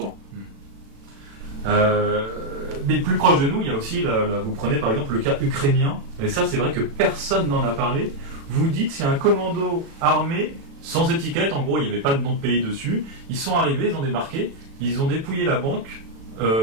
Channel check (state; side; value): late; left; 36 ms